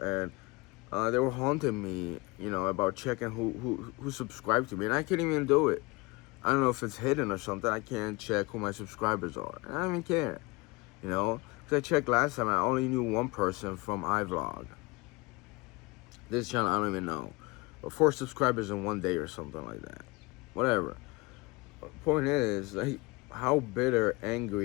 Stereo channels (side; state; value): right; quieter; 24.8 dB